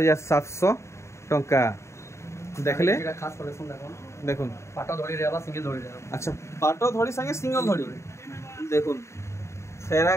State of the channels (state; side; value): late; right; 0.14 ms